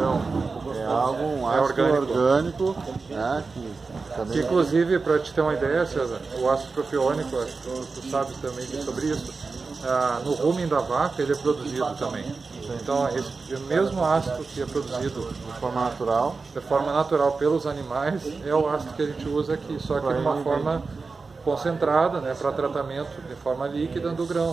É um ácido orgânico, né, que também... Inclusive, para te ter uma ideia, César, o ácido propiônico, tu sabes também sobre isso, no rumen da vaca ele é produzido também. Então, esse mesmo ácido que é produzido de forma natural pelos animais é o ácido que a gente usa aqui, só que de uma forma concentrada, né, para tratamento de forma líquida do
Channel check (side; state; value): left; quieter; 4.3 dB